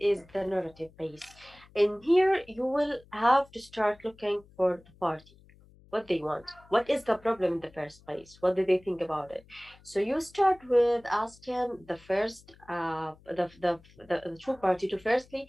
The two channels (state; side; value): noise; left; hum, 26 dB below the sound